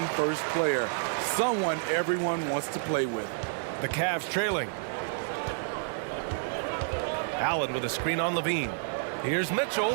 first player, someone everyone wants to play with. The Cavs trailing. Allen with a screen on Levine. Here's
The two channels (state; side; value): silent; left; 58 dB below the other